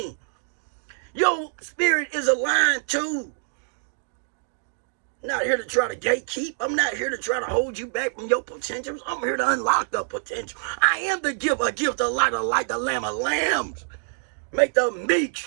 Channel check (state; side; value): silent; left; digital silence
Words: Your spirit is aligned too. I'm not here to try to gatekeep. I'm not here to try to hold you back from your potentials. I'm here to unlock the potential. I am the gift, a gift, a light, the lamb of lambs. Make the meek